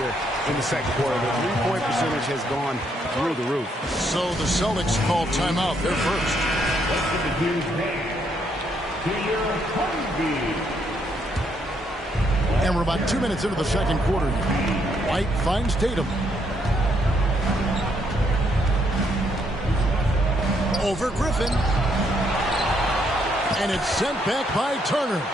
in the second quarter. The three-point percentage has gone through the roof. So the Celtics call timeout. They're first. And we're about 2 minutes into the second quarter. White finds Tatum. Over Griffin. And it's sent back by Turner.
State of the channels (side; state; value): both; normal; correlation 0.73